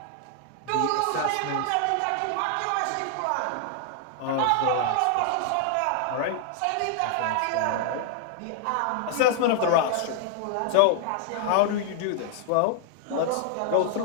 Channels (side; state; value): both; different; correlation 0.00